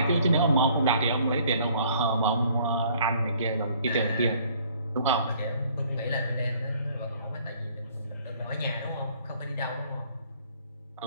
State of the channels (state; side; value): inverted; both; correlation -0.59